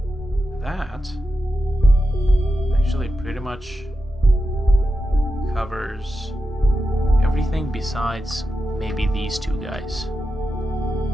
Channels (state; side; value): normal; both; correlation 0.90